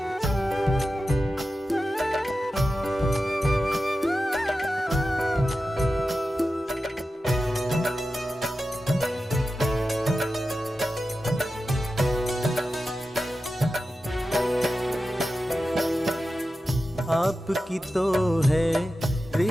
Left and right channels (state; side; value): normal; both; correlation 0.92